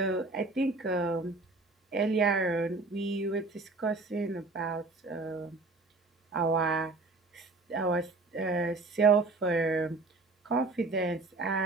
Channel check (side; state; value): left; quieter; 3.5 dB